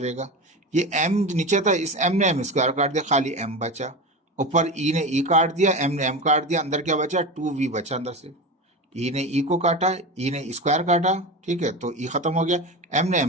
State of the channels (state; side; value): normal; both; correlation 0.25